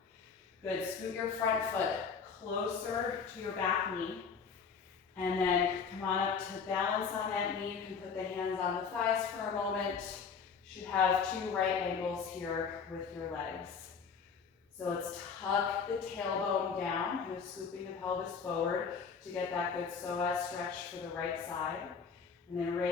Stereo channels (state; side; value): quieter; right; 5.9 dB